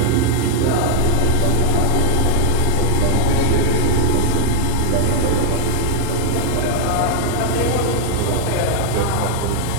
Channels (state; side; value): different; both; correlation 0.00